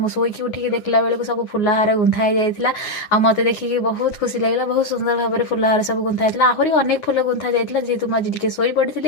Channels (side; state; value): right; late; 9.6 ms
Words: शोक उठिक देखला बेलू सब फुलहार गुंथा जाइए आ मत देखिए बहुत खुशी लगे बहुत सुंदर भाव में फुलहार सब गुंथा जाता आहरी अनेक फुल गुंथा जाता जेहेतु मुझे टे शोई पड़ी